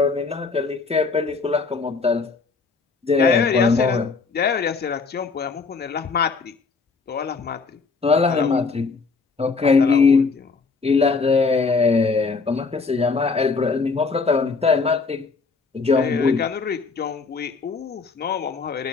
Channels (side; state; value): right; quieter; 4.5 dB